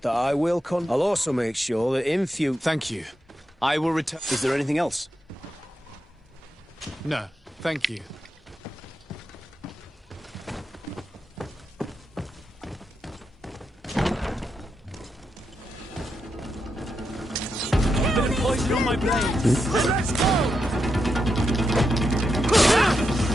that I will I'll also make sure that in future... Thank you. I will return... Is there anything else? No, thank you. Bit of poison on my blade. Let's go!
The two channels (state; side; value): normal; both; correlation 0.85